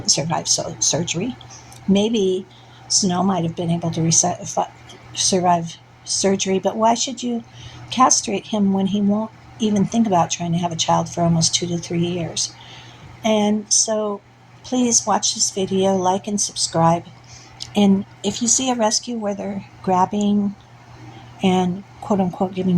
survive surgery. Maybe Snow might have been able to survive surgery, but why should you castrate him when he won't even think about trying to have a child for almost 2 to 3 years? And so please watch this video, like and subscribe. And if you see a rescue where they're grabbing and quote unquote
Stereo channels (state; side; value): identical; both; correlation 1.00